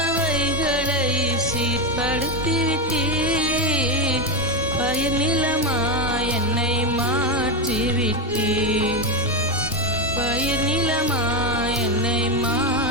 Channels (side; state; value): both; normal; correlation 0.10